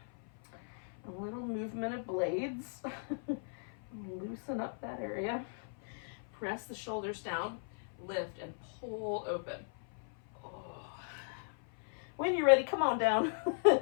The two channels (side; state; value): right; silent; 53 dB below the other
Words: A little movement of blades. Loosen up that area. Press the shoulders down, lift, and pull open. When you're ready, come on down.